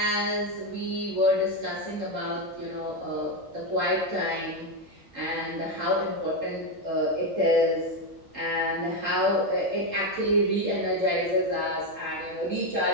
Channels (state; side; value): normal; both; correlation 0.08